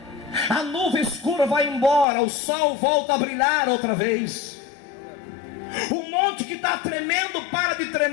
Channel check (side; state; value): right; drops out; at 2.1 s